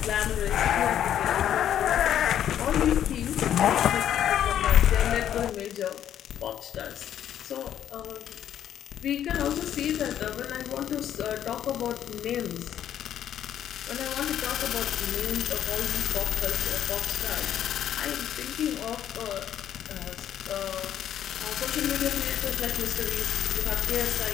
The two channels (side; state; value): right; quieter; 10.4 dB